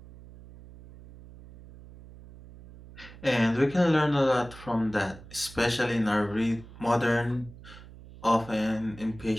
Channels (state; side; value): noise; right; hum, 18 dB below the sound